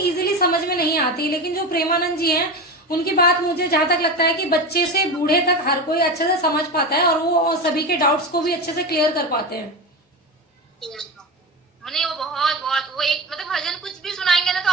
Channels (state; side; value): normal; both; correlation 0.23